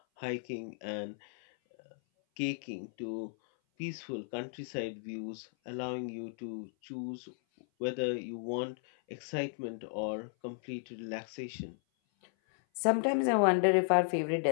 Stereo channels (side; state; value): right; silent; 55 dB below the other